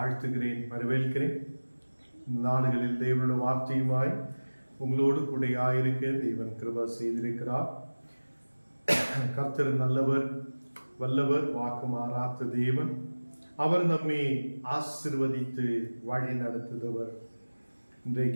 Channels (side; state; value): both; inverted; correlation -1.00